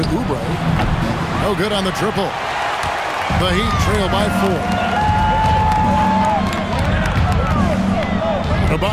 Oubre. No good on the triple. The Heat trail by 4.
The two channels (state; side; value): identical; both; correlation 1.00